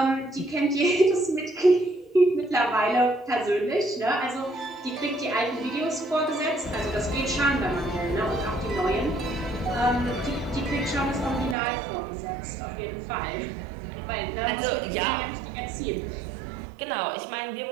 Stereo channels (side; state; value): left; drops out; at 11.6 s